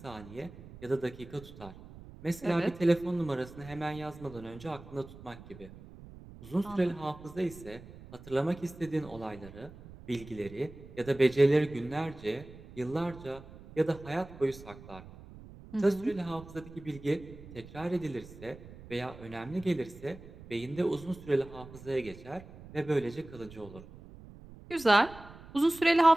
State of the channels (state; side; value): noise; right; rumble, 17 dB below the sound